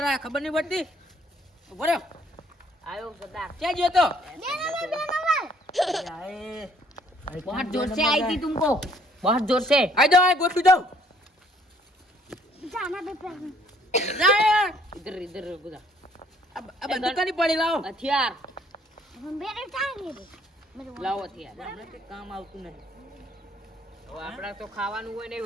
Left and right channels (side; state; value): both; normal; correlation 0.62